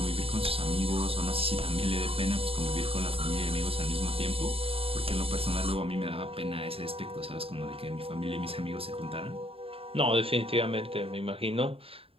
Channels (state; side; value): late; left; 0.27 ms